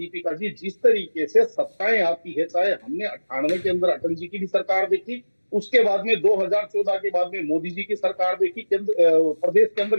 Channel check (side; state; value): both; inverted; correlation -1.00